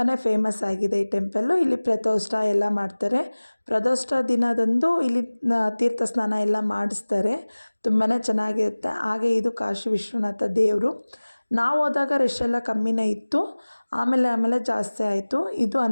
ಫೇಮಸ್ ಆಗಿದೆ ಈ ಟೆಂಪಲ್ಲು. ಇಲ್ಲಿ ಪ್ರದೋಷ ಎಲ್ಲ ಮಾಡ್ತಾರೆ. ಪ್ರದೋಷ ದಿನದಂದು ಇಲ್ಲಿ ತೀರ್ಥ ಸ್ನಾನ ಎಲ್ಲ ಮಾಡಿಸ್ತಾರೆ. ತುಂಬಾ ಚೆನ್ನಾಗಿರುತ್ತೆ. ಹಾಗೆ ಇದು ಕಾಶಿ ವಿಶ್ವನಾಥ ದೇವರು. ನಾವು ಹೋದಾಗ ರಶ್ ಎಲ್ಲ ಕಮ್ಮಿನೇ ಇತ್ತು, ಆಮೇಲೆ ಜಾಸ್ತಿ ಆಯಿತು. ಇದು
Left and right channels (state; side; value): inverted; both; correlation -1.00